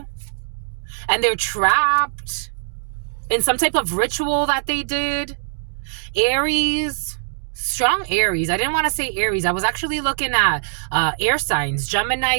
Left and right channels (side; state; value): left; silent; digital silence